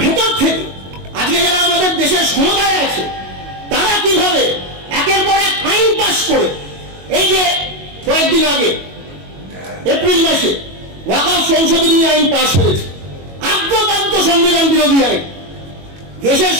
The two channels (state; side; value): late; left; 22 ms